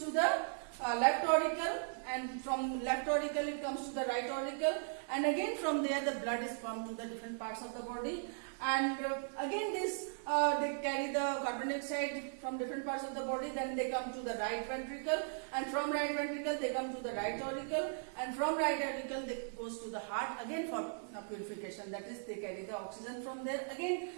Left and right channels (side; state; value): left; silent; 53 dB below the other